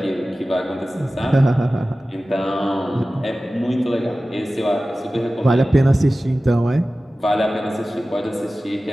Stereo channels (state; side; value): normal; both; correlation 0.96